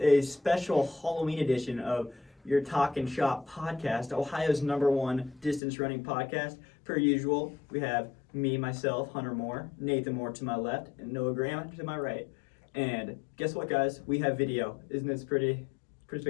special Halloween edition of your Talkin Shop podcast, Ohio's #1 distance running podcast. Per usual, we have me, myself, Hunter Moore, Nathan Moore to my left, and Noah Graham to my right. And guess what, guys? We have video. Isn't this pretty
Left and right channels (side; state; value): right; drops out; at 5.6 s